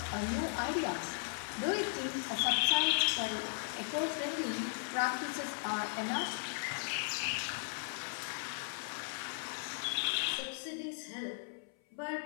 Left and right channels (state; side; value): silent; right; 53 dB below the other